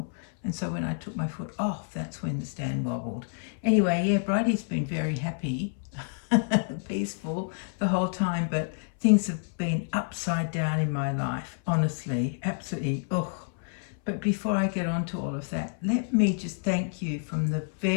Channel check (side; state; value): right; silent; 59 dB below the other